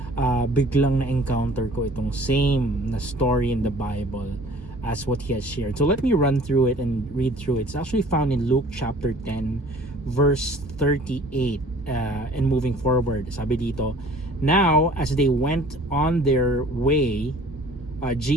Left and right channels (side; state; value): both; normal; correlation 0.50